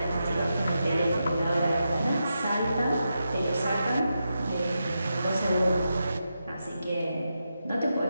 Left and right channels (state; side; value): inverted; both; correlation -0.87